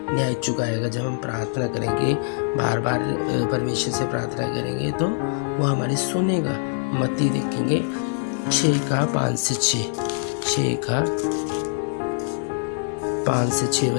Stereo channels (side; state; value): right; silent; digital silence